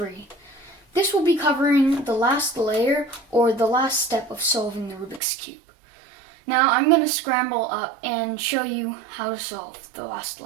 This will be covering the last layer or the last step of solving the Rubik's Cube. Now I'm going to scramble up and show you how to solve the last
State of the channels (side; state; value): left; drops out; at 5.2 s